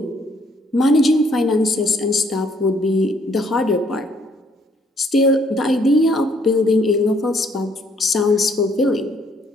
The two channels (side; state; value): both; normal; correlation 0.66